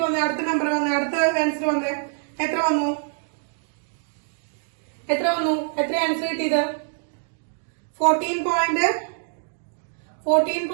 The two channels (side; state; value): left; silent; digital silence